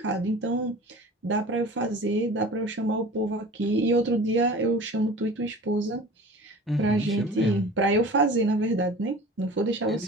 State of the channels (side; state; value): both; normal; correlation 0.40